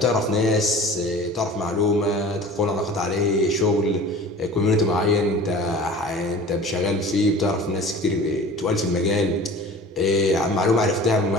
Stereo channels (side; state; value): both; normal; correlation 0.41